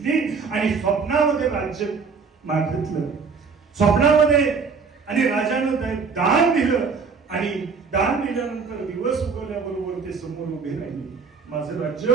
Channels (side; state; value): left; quieter; 5.2 dB